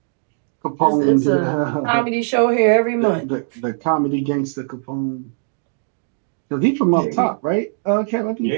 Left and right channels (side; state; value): left; silent; digital silence